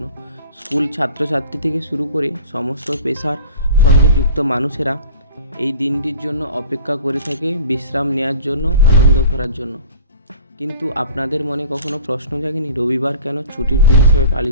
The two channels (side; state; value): both; inverted; correlation -0.43